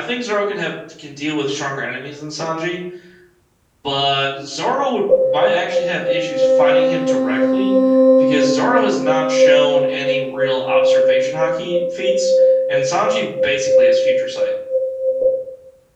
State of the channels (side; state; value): both; identical; correlation 1.00